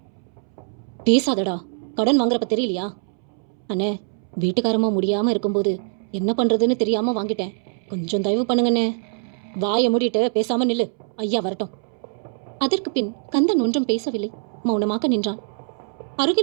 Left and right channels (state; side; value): silent; left; 63 dB below the other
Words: பேசாதடா, கடன் வாங்குறப்ப தெரியலையா? அண்ணே வீட்டுக்காரமா முடியாம இருக்கும்போது என்ன பண்றதுன்னு தெரியாம வாங்கிட்டேன். கொஞ்சம் தயவு பண்ணுங்கண்ணே. வாயை மூடிட்டு பேசாம நில்லு, ஐயா வரட்டும். அதற்கு பின் கந்தன் ஒன்றும் பேசவில்லை, மௌனமாக நின்றான்.